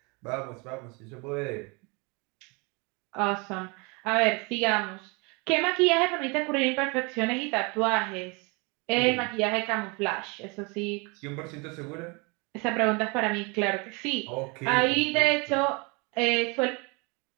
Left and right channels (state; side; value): quieter; left; 29.8 dB